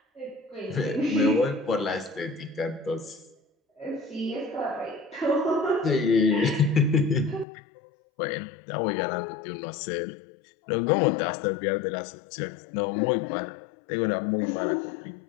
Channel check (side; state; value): right; drops out; at 7.5 s